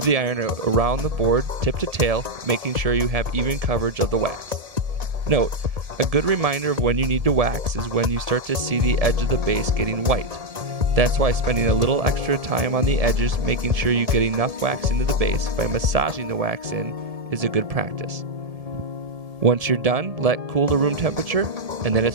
the iron around the board, tip to tail, making sure you have even coverage of the wax. Note, a good reminder of when you need to wax is when you start to see the edge of the base getting white. That's why spending a little extra time on the edges, making sure you get enough wax into the base by massaging the wax in, is a good practice. Once you're done, let cool to room temperature, and then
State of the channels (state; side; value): late; left; 1.7 ms